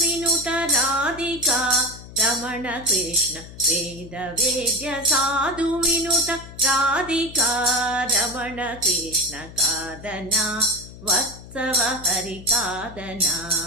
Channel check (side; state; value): left; noise; hum, 16 dB below the sound